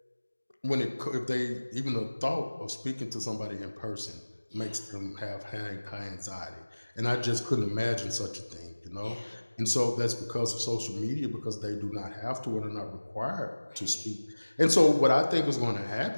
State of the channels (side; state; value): both; inverted; correlation -1.00